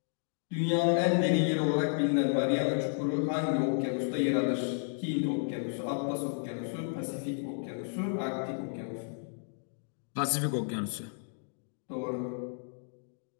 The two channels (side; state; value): right; silent; digital silence